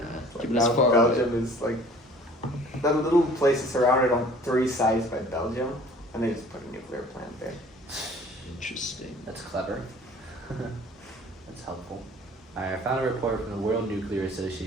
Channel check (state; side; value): normal; both; correlation 0.51